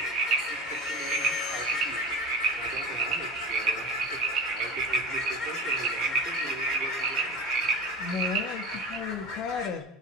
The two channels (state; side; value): normal; both; correlation 0.31